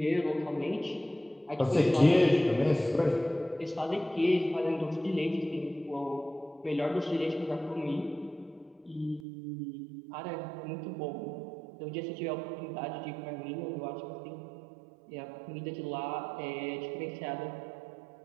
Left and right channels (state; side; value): drops out; left; at 9.2 s